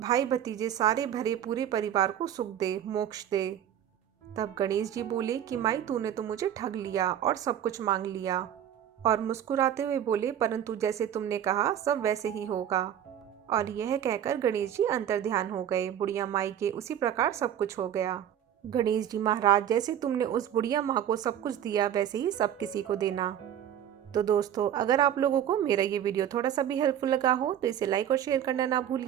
भतीजे सारे भरे पूरे परिवार को सुख दे, मोक्ष दे। तब गणेश जी बोले कि माई तूने तो मुझे ठग लिया और सब कुछ मांग लिया। और मुस्कुराते हुए बोले, परंतु जैसे तुमने कहा सब वैसे ही होगा। और यह कहकर गणेश जी अंतर्ध्यान हो गए। बुढ़िया माई के उसी प्रकार सब कुछ हो गया। गणेश जी महाराज, जैसे तुमने उस बुढ़िया माँ को सब कुछ दिया वैसे ही सब किसी को देना। तो दोस्तों, अगर आप लोगों को मेरा ये वीडियो थोड़ा सा भी हेल्पफुल लगा हो तो इसे लाइक और शेयर करना ना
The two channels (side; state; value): left; quieter; 10.2 dB